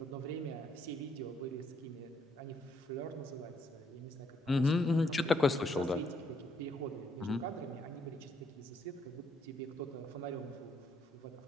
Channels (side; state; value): both; normal; correlation 0.71